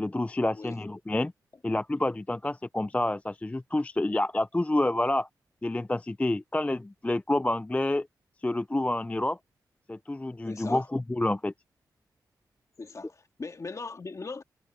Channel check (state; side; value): normal; both; correlation 0.96